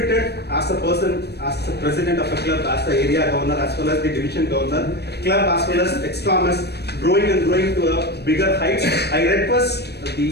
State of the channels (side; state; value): right; late; 0.48 ms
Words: as a person, as the president of a club, as the area governor, as well as the division governor, club as well as ex-Thomas, growing and growing to a bigger heights. I request